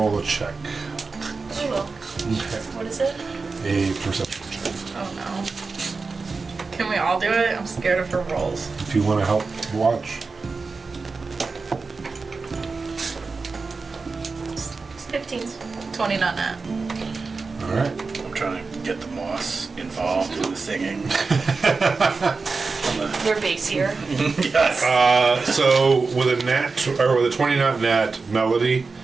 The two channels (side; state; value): left; quieter; 4.3 dB